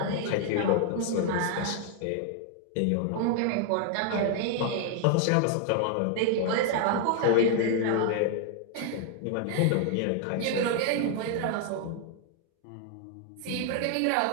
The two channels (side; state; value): both; different; correlation 0.00